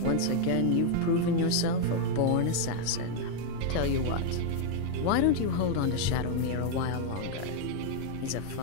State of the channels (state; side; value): different; both; correlation 0.00